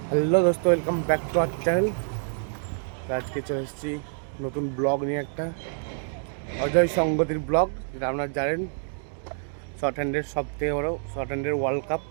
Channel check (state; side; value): silent; left; digital silence